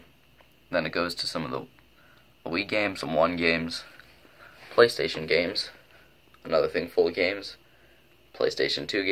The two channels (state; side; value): identical; both; correlation 1.00